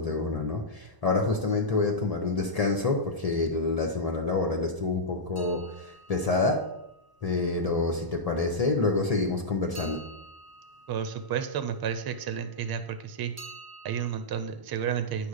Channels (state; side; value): late; left; 1.0 ms